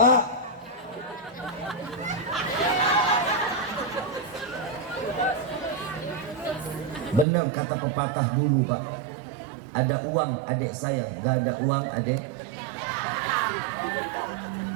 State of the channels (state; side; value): drops out; left; at 7.2 s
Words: benar kata pepatah dulu Pak. Ada uang adik saya, gak ada uang adik.